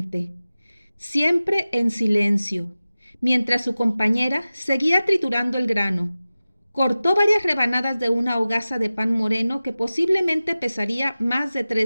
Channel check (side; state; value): both; inverted; correlation -0.96